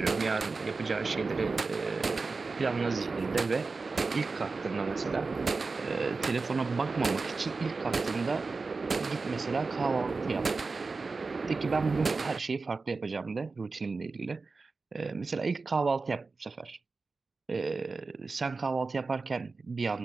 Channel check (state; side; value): quieter; left; 4.1 dB